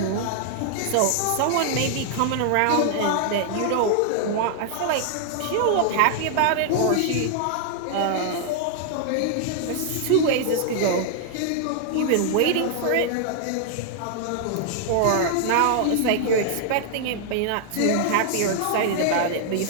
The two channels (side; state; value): both; different; correlation -0.01